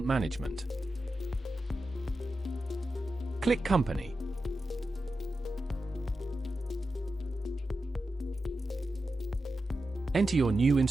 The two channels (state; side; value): normal; both; correlation 0.91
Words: Management. Click Company. Enter your new